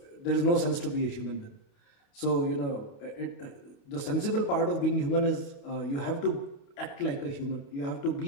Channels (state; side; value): late; right; 28 ms